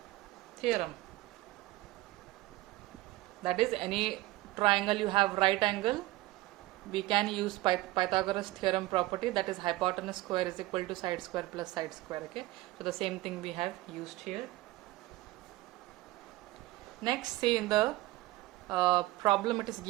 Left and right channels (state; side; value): quieter; left; 18.6 dB